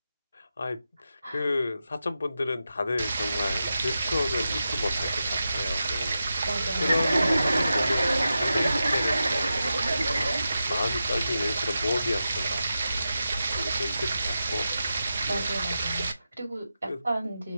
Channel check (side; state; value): both; inverted; correlation -0.90